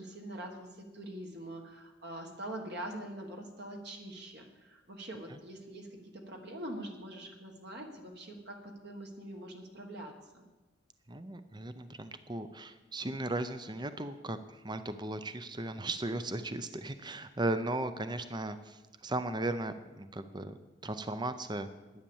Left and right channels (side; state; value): both; normal; correlation 0.52